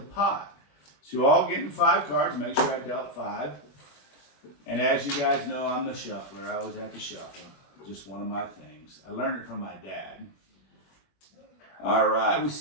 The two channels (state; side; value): late; right; 21 ms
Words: So you're all getting 5 cards. Make sure I dealt 5. And as you guys know, I'm the shuffler. I always have to shuffle. Just one of my things. I learned it from my dad. All right, we